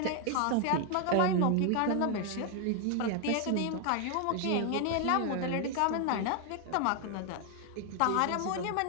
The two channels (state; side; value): different; both; correlation 0.00